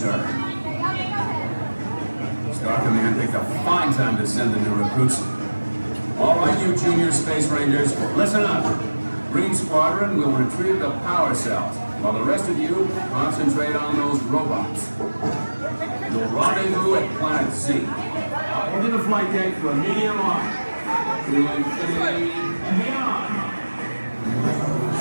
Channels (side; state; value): both; inverted; correlation -1.00